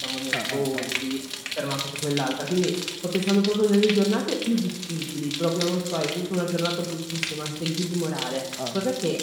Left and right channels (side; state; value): both; identical; correlation 1.00